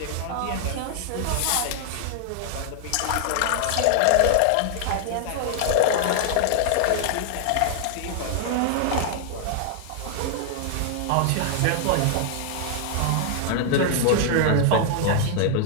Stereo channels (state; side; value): different; both; correlation 0.00